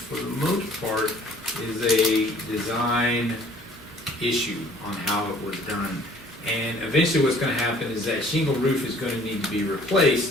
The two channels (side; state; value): both; normal; correlation 0.55